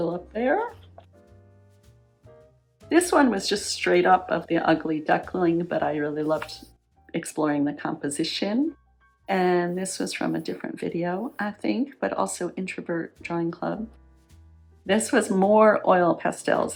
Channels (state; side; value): identical; both; correlation 1.00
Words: up there. This one was just straight up of the ugly duckling, but I really loved exploring the composition. And this was from a different video, I think, but also Introvert Drawing Club. This was more oil